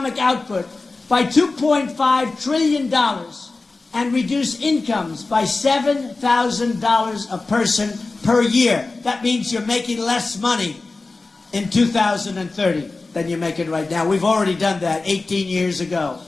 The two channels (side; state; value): right; quieter; 3.6 dB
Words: output by $2.5 trillion, and reduce incomes by $7,000 a person per year. That means you're making less money in 2030 than you're making right now. We've already done that 18 years ago.